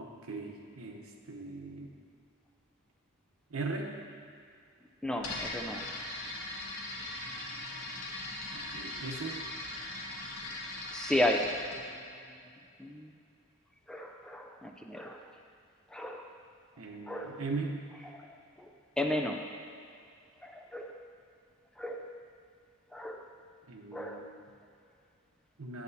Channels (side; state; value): both; normal; correlation 0.52